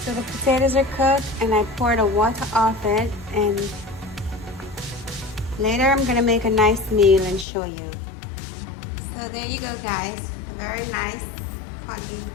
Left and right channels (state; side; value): drops out; right; at 7.5 s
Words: the potatoes are cooked and I pour the water off it, and later I'm gonna make a nice meal and show you. So there you go, guys. Very nice corned beef